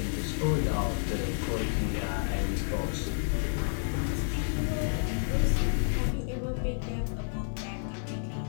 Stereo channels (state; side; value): silent; right; 57 dB below the other